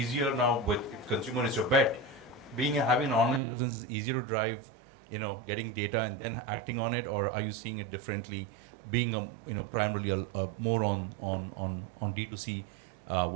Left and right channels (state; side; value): drops out; left; at 3.4 s